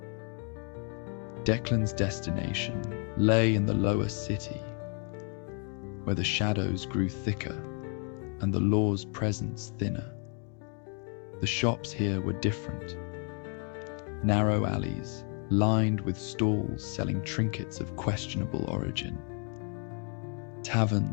Declan's destination lay in the lower city, where the shadows grew thicker and the law's presence thinner. The shops here were different. Narrow alleys, lined with stalls selling trinkets of questionable origin.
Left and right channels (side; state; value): right; quieter; 39.5 dB